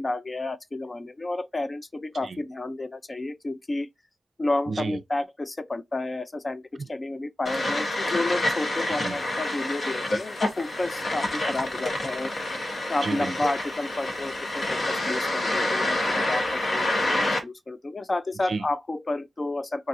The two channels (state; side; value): normal; both; correlation 0.93